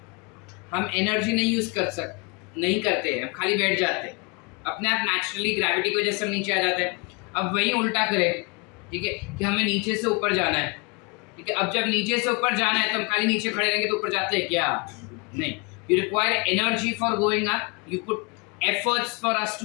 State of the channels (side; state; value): right; quieter; 30.1 dB